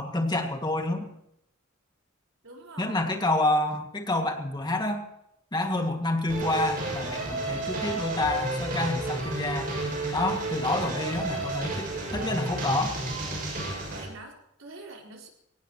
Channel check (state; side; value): normal; both; correlation 0.42